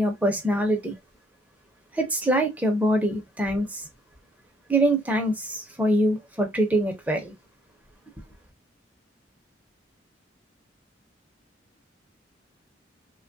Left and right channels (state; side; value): normal; both; correlation 0.66